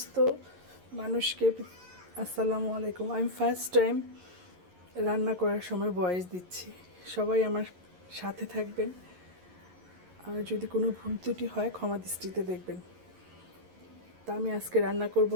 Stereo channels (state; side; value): late; left; 11 ms